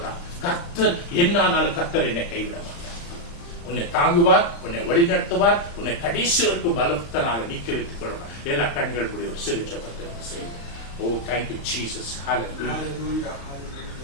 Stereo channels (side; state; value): right; late; 35 ms